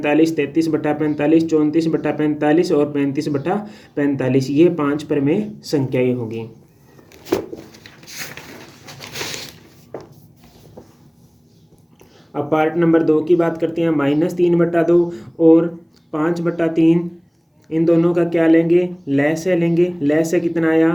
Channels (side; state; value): both; identical; correlation 1.00